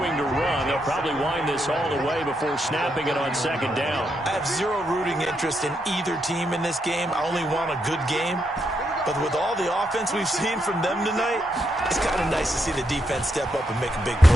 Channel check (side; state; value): both; normal; correlation 0.80